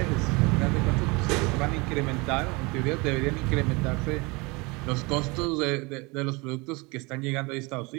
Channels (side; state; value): left; quieter; 26.4 dB